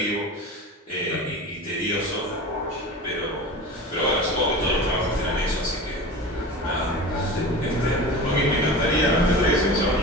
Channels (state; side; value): normal; both; correlation 0.32